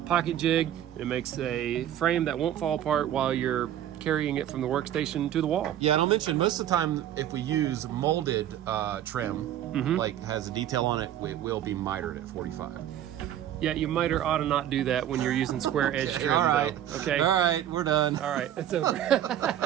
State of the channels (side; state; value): left; quieter; 11.3 dB